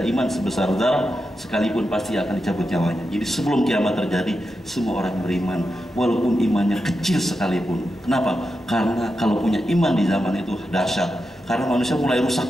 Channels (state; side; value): normal; both; correlation 0.88